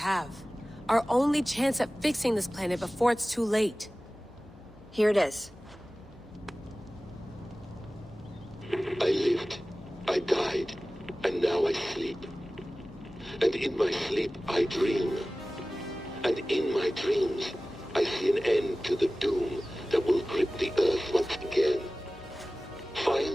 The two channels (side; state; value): both; normal; correlation 0.97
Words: Our only chance at fixing this planet before it's too late. Here it is. I lived, I died, and now I sleep. And in my sleep I dream. And in my dreams, I see an end to the doom that will grip the Earth once again.